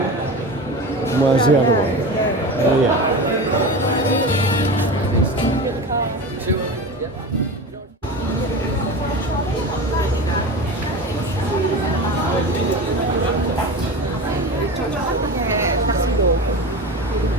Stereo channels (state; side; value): normal; both; correlation 0.28